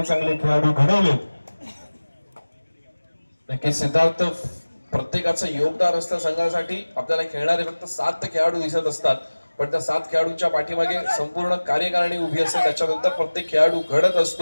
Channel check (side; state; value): both; inverted; correlation -1.00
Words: खेळाडू घडवलेत. नक्कीच सिद्धार्थ, प्रत्येकाचं योगदान असतं संघासाठी. आपल्याला खेळणारे फक्त 7 खेळाडू दिसत असतात, पण त्या 7 खेळाडूंच्या पाठीमागे संपूर्ण कार्यकारिणी उभी असते. त्याच्यानंतर प्रत्येक खेळाडू घडत